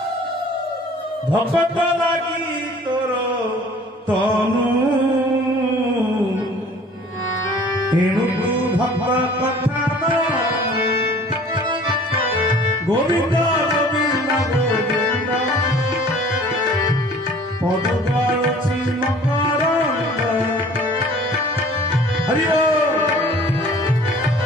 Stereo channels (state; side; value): normal; both; correlation 0.49